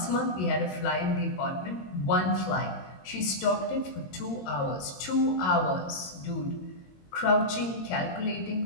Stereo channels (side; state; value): right; late; 22 ms